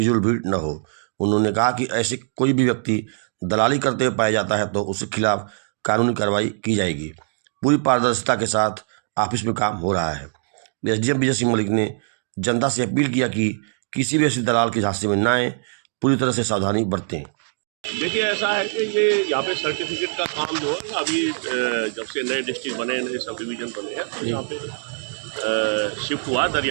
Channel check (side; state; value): left; silent; digital silence